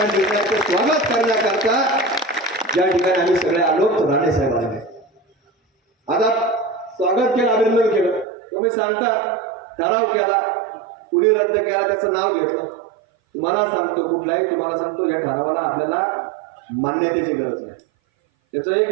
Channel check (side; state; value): left; drops out; at 8.2 s